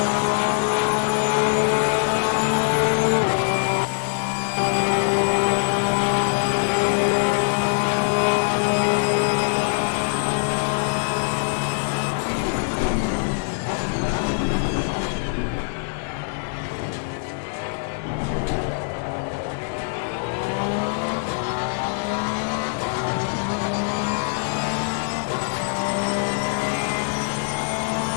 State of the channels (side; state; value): right; silent; 63 dB below the other